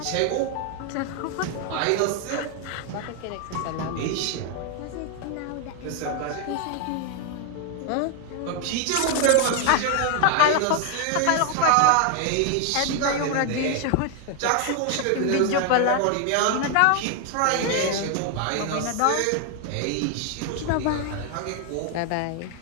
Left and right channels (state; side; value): different; both; correlation 0.01